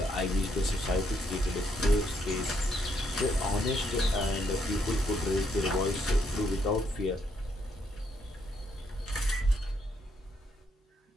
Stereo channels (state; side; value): normal; both; correlation 0.74